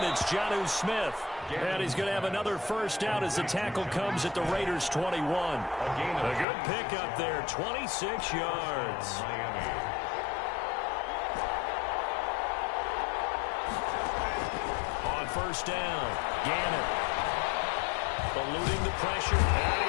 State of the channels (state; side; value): drops out; right; at 6.5 s